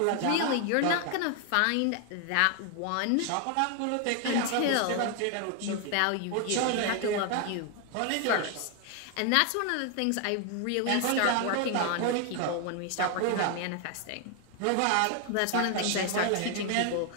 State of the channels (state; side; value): different; both; correlation 0.00